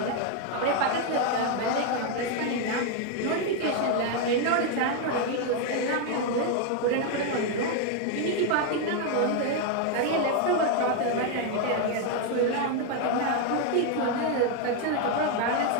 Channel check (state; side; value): different; both; correlation 0.01